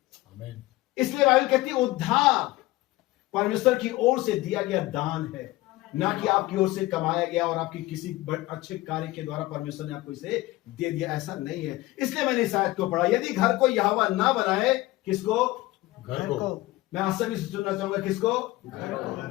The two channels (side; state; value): right; quieter; 18.7 dB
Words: आमीन। इसलिए बाइबल कहती है उद्धार परमेश्वर की ओर से दिया गया दान है, ना कि आपकी ओर से कमाया गया और आपकी किसी अच्छे कार्य के द्वारा परमेश्वर ने आपको इसे दे दिया, ऐसा नहीं है। इसलिए मैंने इस आयत को पढ़ा, यदि घर को यहोवा ना बनाए, किसको? घर को। मैं आज सभी से सुनना चाहूंगा, किसको?